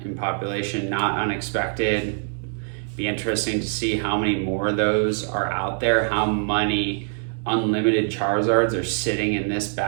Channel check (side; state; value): left; silent; 63 dB below the other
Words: in population, not unexpected. Be interesting to see how many more of those are out there, how many unlimited Charizards are sitting in this